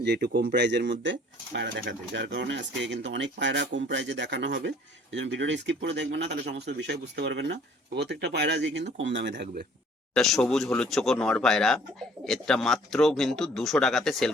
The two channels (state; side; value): normal; both; correlation 0.56